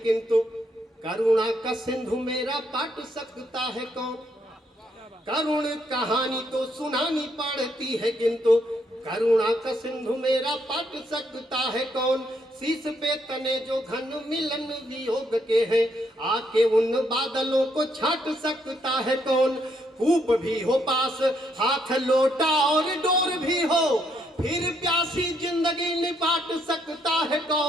करुणा का सिंधु मेरा पाट सकता है कौन। करुण कहानी तो सुनानी पड़ती है किंतु करुणा का सिंधु मेरा पाट सकता है कौन। शीश पे तने जो घन मिलन वियोग के हैं, आके उन बादलों को छाट सकता है कौन। कूप भी हो पास हाथ लोटा और डोर भी हो, फिर प्यासी जिंदगी निपाट सकता है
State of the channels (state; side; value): normal; both; correlation 0.73